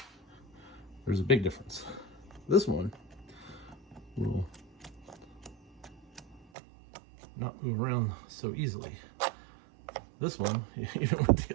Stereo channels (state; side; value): drops out; left; at 6.5 s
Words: there's a big difference. This one will not move around so easily. This one, even with the